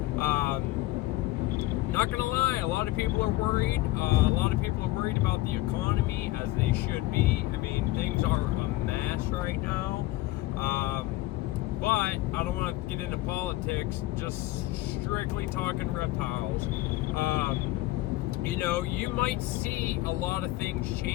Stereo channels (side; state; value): right; quieter; 17.8 dB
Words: not gonna lie, a lot of people are worried. A lot of people are worried about the economy, as they should be. I mean, things are a mess right now. But I don't want to get into politics, just strictly talking reptiles. You know, you might see a lot of things